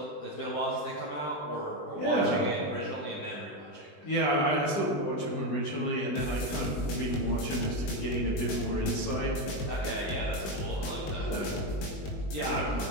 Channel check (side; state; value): right; late; 20 ms